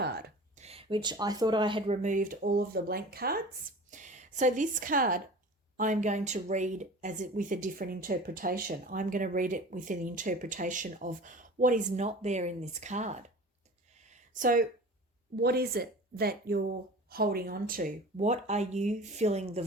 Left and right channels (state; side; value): normal; both; correlation 0.39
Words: which I thought I had removed all of the blank cards. So this card I'm going to read with a different interpretation. I'm going to read it with an interpretation of what is not there in this card. So what is it that you're holding on to? What are you filling the